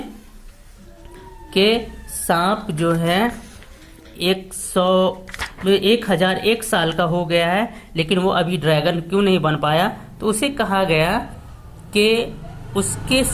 कि सांप जो है 1001 साल का हो गया है, लेकिन वो अभी ड्रैगन क्यों नहीं बन पाया। तो उसे कहा गया कि उसके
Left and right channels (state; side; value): identical; both; correlation 1.00